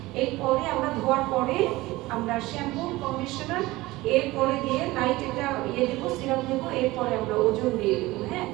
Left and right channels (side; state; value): left; quieter; 19.4 dB